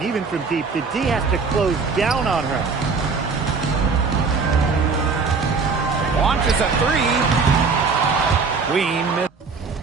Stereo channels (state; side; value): quieter; left; 4.7 dB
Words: even from deep. The D has to close down on her. Launches a three. Queen